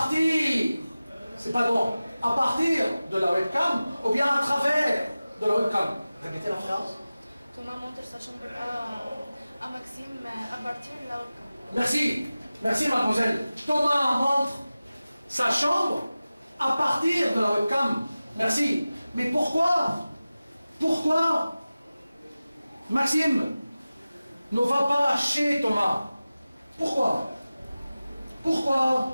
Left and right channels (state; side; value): inverted; both; correlation -0.96